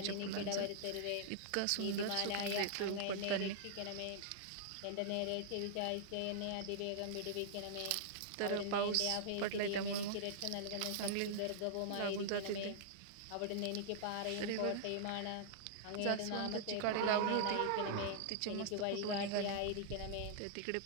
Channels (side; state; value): both; different; correlation -0.02